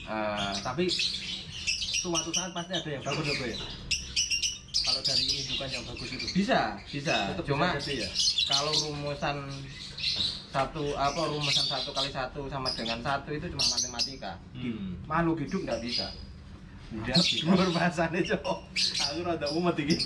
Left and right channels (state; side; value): identical; both; correlation 1.00